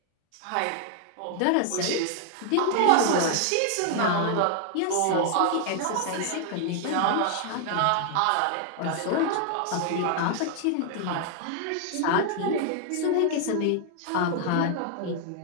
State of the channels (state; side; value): different; both; correlation 0.00